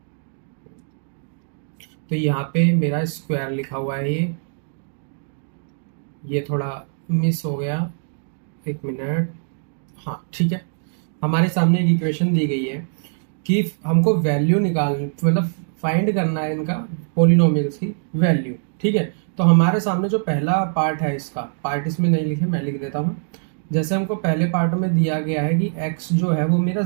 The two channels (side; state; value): left; silent; digital silence